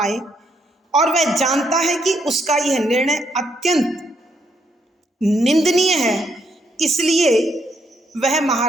और वह जानता है कि उसका यह निर्णय अत्यंत निंदनीय है, इसलिए वह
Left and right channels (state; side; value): normal; both; correlation 0.74